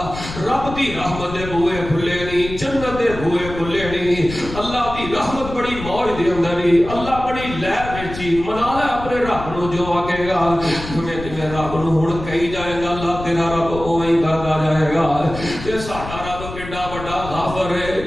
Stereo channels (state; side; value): noise; left; rumble, 10 dB below the sound